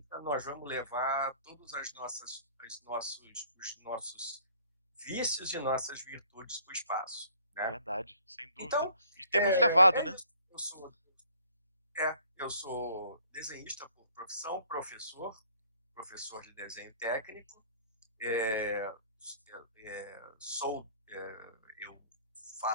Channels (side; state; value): both; inverted; correlation -0.56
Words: nós vamos levar todos os nossos vícios e nossas virtudes para o espaço, né? Verdade, sem dúvida. Então, E temos levado, é né? isso. Eu sou desenhista por profissão, professor de desenho técnico. É, eu